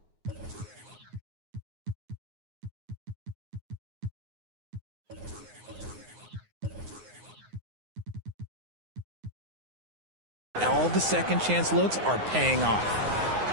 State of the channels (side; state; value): left; late; 9.6 ms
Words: all the second chance looks are paying off.